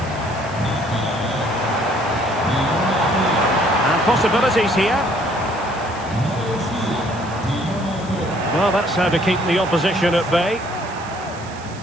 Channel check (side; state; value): right; noise; hiss, 20 dB below the sound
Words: And possibilities here. Well, that's how to keep the opposition at bay.